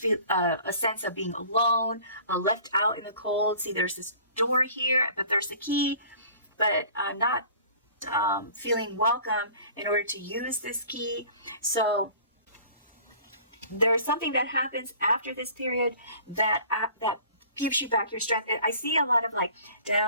a sense of being alone, left out in the cold. See, there's this door here, but there's the key, but not feeling welcome in order to use this key. So there's something that happens after this period that gives you back your strength. I see a lot of like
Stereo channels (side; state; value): both; inverted; correlation -0.47